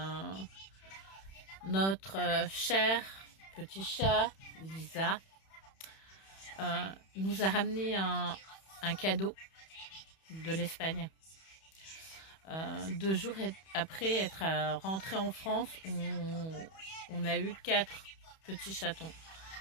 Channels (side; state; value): right; late; 31 ms